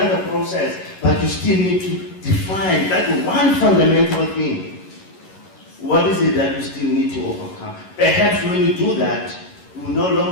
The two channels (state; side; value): late; right; 11 ms